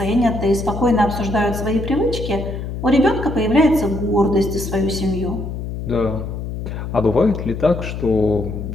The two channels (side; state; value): left; noise; hum, 6 dB below the sound